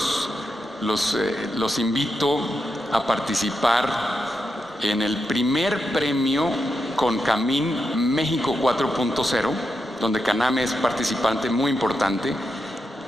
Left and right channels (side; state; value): both; normal; correlation 0.86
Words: invito a participar en el primer premio CONCAMIN México 4.0, donde CANAME es participante muy importante.